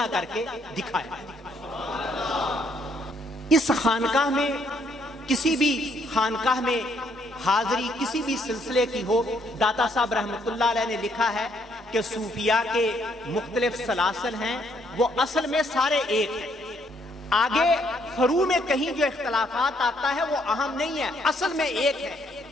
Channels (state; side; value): normal; both; correlation 0.69